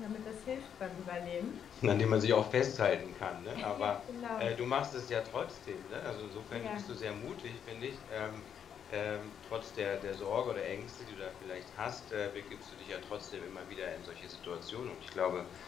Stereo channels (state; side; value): quieter; right; 8.3 dB